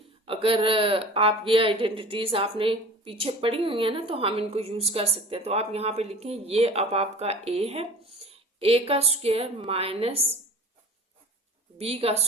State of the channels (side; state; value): both; normal; correlation 0.40